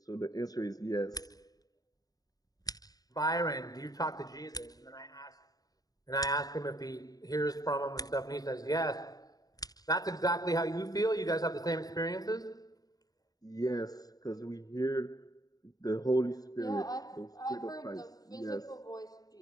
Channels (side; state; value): right; late; 0.18 ms